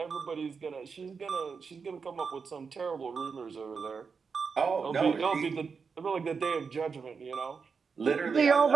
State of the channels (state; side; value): quieter; left; 5.5 dB